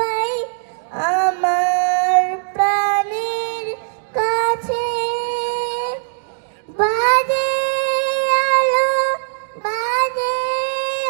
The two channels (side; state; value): left; silent; digital silence